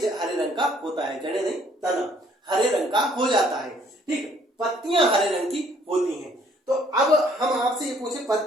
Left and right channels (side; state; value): both; normal; correlation 0.62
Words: हरे रंग का होता है, जड़ें नहीं, तना हरे रंग का हो जाता है। ठीक, पत्तियां हरे रंग की होती हैं। तो अब हम आपसे ये पूछे